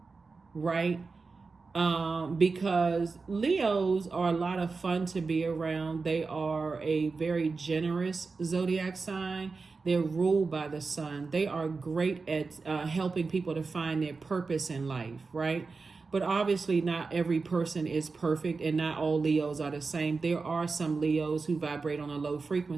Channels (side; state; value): left; quieter; 4.3 dB